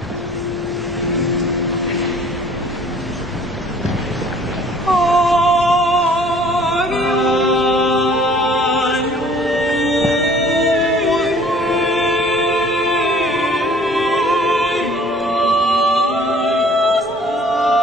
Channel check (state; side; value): normal; both; correlation 0.53